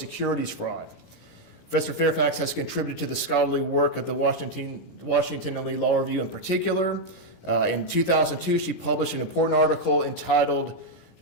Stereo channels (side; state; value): right; late; 17 ms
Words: fraud. Professor Fairfax has contributed to the scholarly work of the Washington & Lee Law Review in particular. In 2002, she published an important article entitled